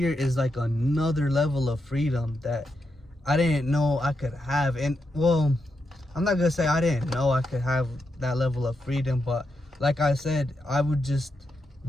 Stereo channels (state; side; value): normal; both; correlation 0.84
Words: is like another level of freedom that I didn't know I could have. And well, I'm not gonna say I didn't know I could have that level of freedom, but like I said, I would just